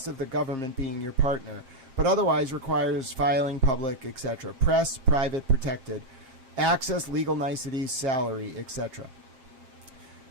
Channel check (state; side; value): late; left; 7.5 ms